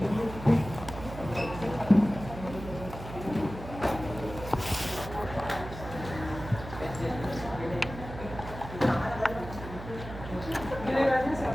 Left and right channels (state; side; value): noise; right; hum, 11 dB below the sound